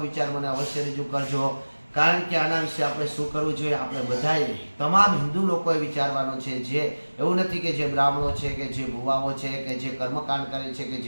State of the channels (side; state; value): both; inverted; correlation -1.00